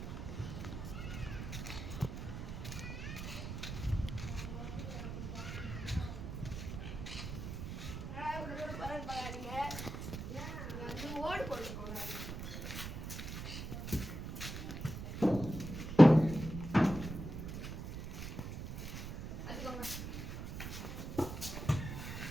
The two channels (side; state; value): right; noise; rumble, 6 dB below the sound